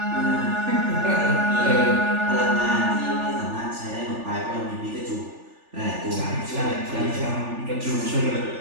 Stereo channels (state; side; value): late; left; 3.4 ms